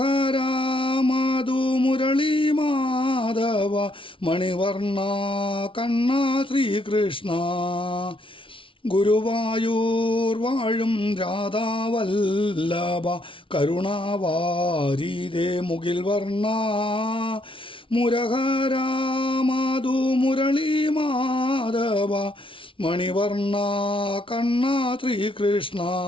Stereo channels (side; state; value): right; late; 0.25 ms